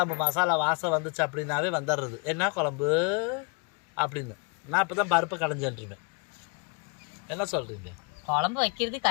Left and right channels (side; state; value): right; quieter; 33.3 dB